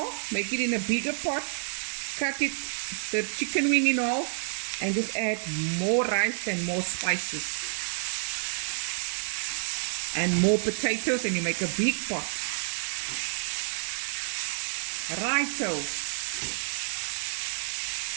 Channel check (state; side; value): silent; left; 59 dB below the other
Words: make it in a bigger pot. Cut it, the chicken wing in half, and just add more rice and more spices. And more potatoes, and you make a big pot. Righto.